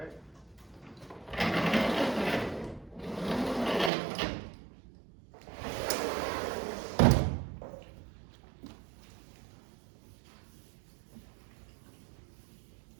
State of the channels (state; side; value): drops out; left; at 3.9 s